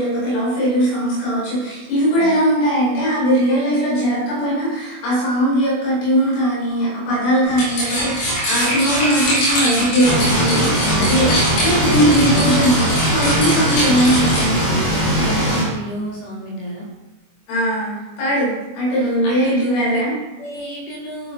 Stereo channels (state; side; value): late; right; 24 ms